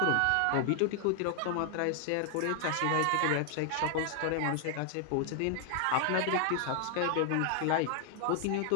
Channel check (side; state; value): both; different; correlation 0.00